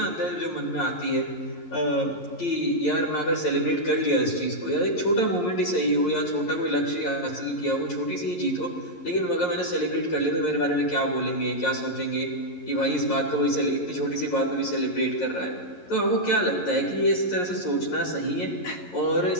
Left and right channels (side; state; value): right; late; 11 ms